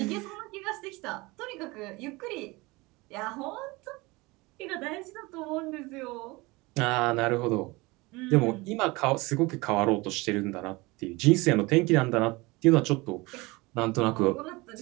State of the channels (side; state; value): left; quieter; 23.3 dB